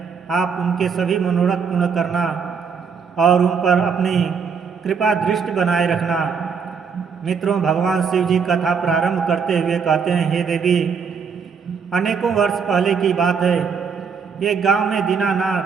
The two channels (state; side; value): quieter; left; 6.1 dB